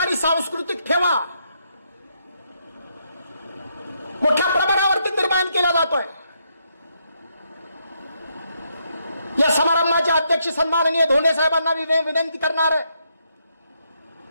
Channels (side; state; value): both; inverted; correlation -0.77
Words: सांस्कृतिक ठेवा मोठ्या प्रमाणावरती निर्माण केला जातोय. या समारंभाचे अध्यक्ष सन्माननीय धोंडे साहेबांना विनंती करणार आहे